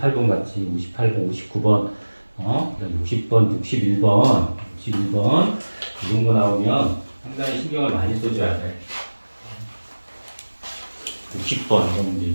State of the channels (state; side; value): inverted; both; correlation -1.00